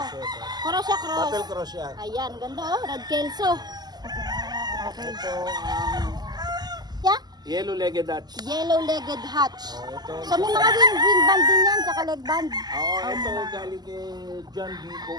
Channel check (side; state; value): left; late; 0.20 ms